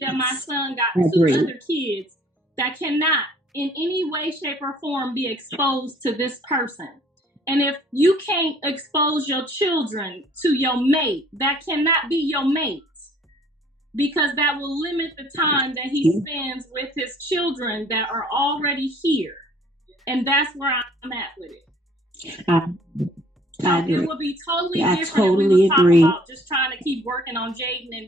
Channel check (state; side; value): normal; both; correlation 0.57